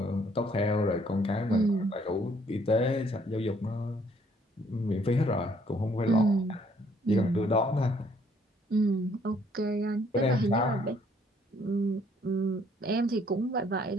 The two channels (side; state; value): both; normal; correlation 0.64